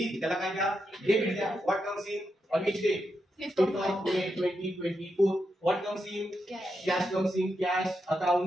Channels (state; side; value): normal; both; correlation 0.85